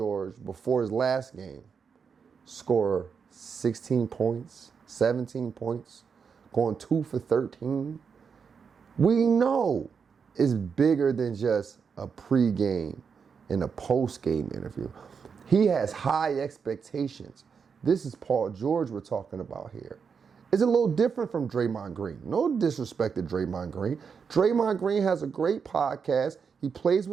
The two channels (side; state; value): left; quieter; 6.1 dB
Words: before his last game score 16 points, 17 points, going 2 for 13. We know it's bigger than just a pregame and a postgame interview. He has high expectations. This is Paul George we're talking about here. It's a little different from Draymond Green. No disrespect to Draymond Green. Draymond Green has a great podcast. He plays